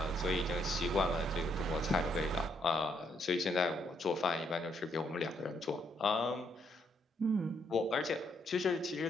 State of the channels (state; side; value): normal; both; correlation 0.73